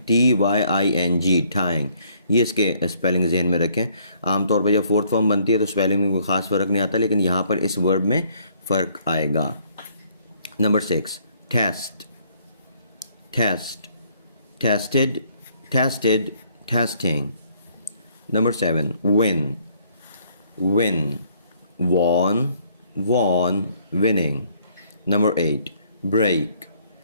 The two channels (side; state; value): both; inverted; correlation -0.65